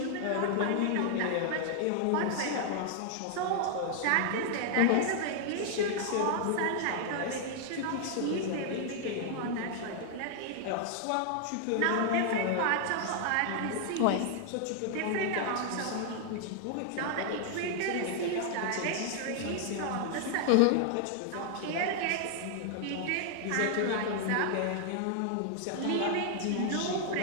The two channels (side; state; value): both; different; correlation 0.00